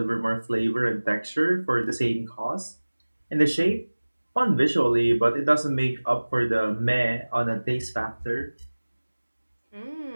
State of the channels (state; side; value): inverted; both; correlation -1.00